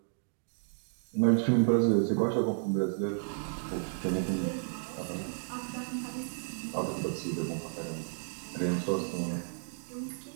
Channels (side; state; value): left; silent; digital silence